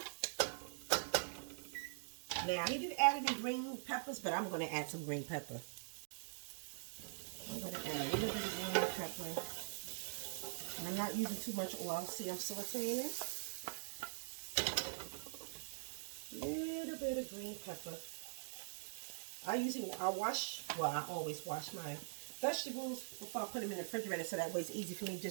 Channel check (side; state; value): left; silent; digital silence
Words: Now, he didn't add any green peppers, but I'm going to add some green pepper. I'm going to add a little bit of green pepper. And I'm not using too much oil. See, I'm sauteing it. Little bit of green pepper. I always wash my vegetables before I put them in the refrigerator, so that way it's easy for me